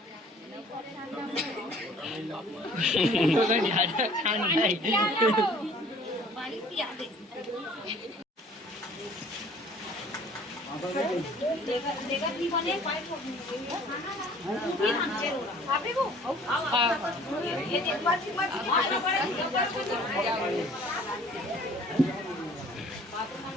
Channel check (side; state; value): both; normal; correlation 0.52